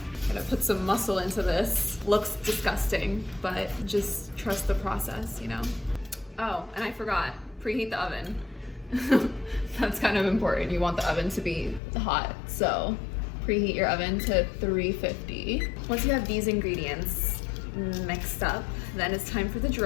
I'm gonna put some muscle into this. Looks disgusting, but just trust the process, you know? Oh, and I forgot, preheat the oven. That's kind of important. You want the oven to be hot, so preheat your oven to 350. Once you have these ingredients mixed up, then it's time for the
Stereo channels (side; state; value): right; drops out; at 11.8 s